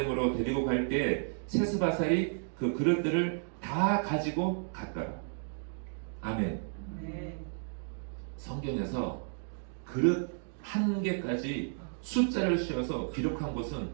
데리고 갈 때 세스바살이 그 그릇들을 다 가지고 갔더라. 아멘. 성경에서 그릇 한 개까지 숫자를 씌워서 기록한 곳은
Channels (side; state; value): left; silent; digital silence